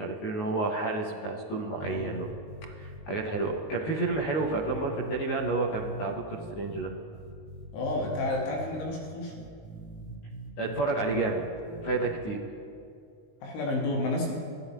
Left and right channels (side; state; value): right; late; 19 ms